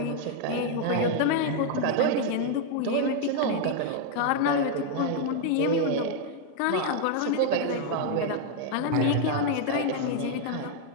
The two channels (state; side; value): different; both; correlation 0.00